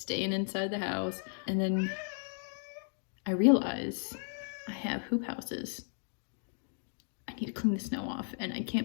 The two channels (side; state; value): right; silent; 55 dB below the other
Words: inside the house. And then I realize I have hoop houses. I need to clean the snow off, and I